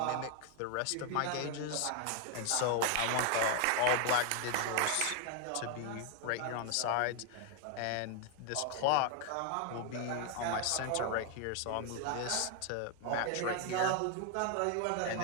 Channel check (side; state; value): both; different; correlation 0.00